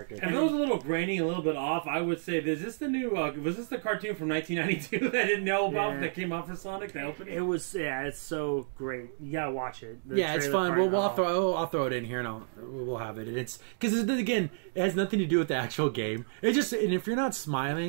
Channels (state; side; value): silent; left; digital silence